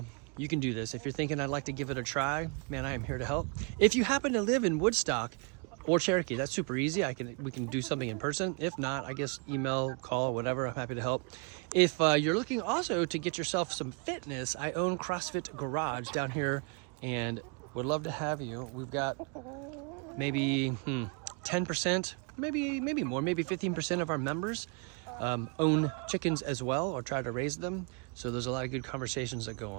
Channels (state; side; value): quieter; left; 36.2 dB